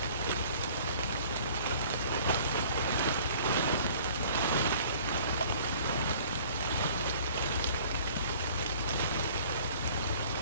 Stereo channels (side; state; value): both; inverted; correlation -0.52